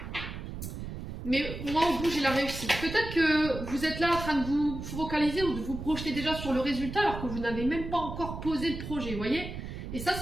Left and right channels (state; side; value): noise; right; rumble, 8 dB below the sound